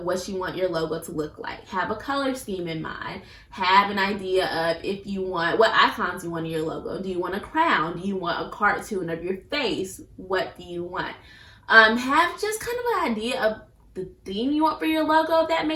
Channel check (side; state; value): both; identical; correlation 1.00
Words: what you want your logo to look like. Have a color scheme in mind. Have an idea of what icons you want in your logo. Do you want a crown? Do you want a cartoon of your face? What do you want? Have just kind of an idea of the theme you want for your logo, if that